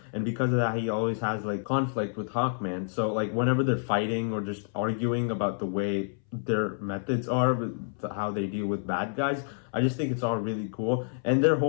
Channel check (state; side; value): silent; right; 59 dB below the other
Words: and because of that he always has conflict with Hawkman. So whenever they're fighting or just arguing about the way their methods are with how they deal with bad guys, I just think it's all really cool. And their